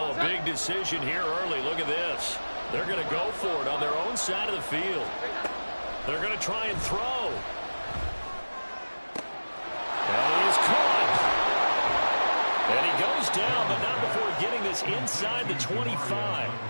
a big decision here early. Look at this. They're going to go for it on their own side of the field. They're going to try and throw. And he is caught. And he goes down, but not before getting this inside the 25.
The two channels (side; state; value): both; inverted; correlation -1.00